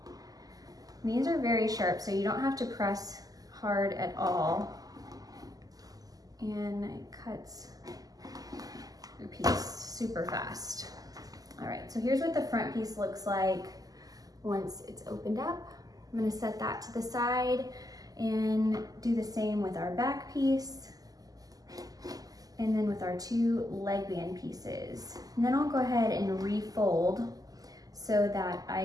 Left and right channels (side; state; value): left; late; 0.17 ms